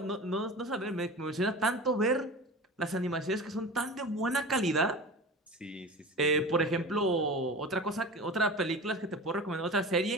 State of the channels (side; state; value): both; normal; correlation 0.33